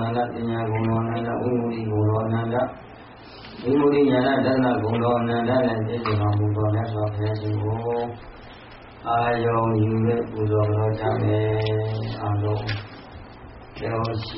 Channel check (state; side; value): identical; both; correlation 1.00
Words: nanda tinya gồm đô nanda vimudi gồm đô nanda vimudi nhana dana gồm đô nanda nè bì giờ đô mù đô nè so phê si hô Ayong yu lệ bù đô đô cha mê a đô Kéo